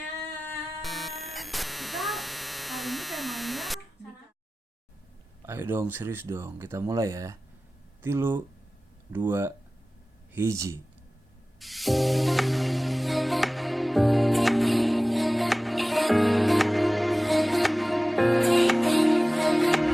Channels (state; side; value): normal; both; correlation 0.97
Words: Kita hari ini temanya Ayo dong, serius dong, kita mulai ya. 3, 2, 1.